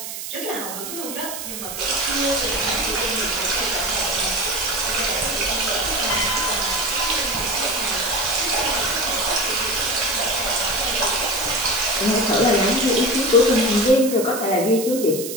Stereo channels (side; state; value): right; noise; hiss, 8 dB below the sound